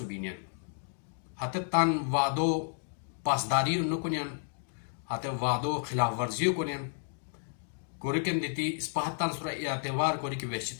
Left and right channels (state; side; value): silent; right; digital silence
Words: بینین ہتے تان وعدو پاسداری انو کنین ہتے وعدو خلاف ورزیو کنین کوری کن دیتی اس پا ہتان سورا اعتبار کوری کہ